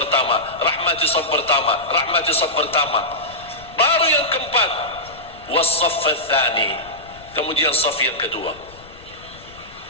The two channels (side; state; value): left; noise; rumble, 22 dB below the sound